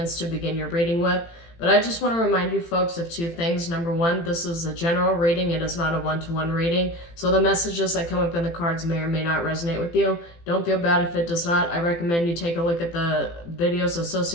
to begin your reading with. But I just want to remind you folks of two things. Number one, this is a general reading. It is not a one-to-one reading. So the messages that come up in the cards may or may not resonate with you. Don't feel bad if it does not. I recommend you take a look at the videos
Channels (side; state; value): right; late; 18 ms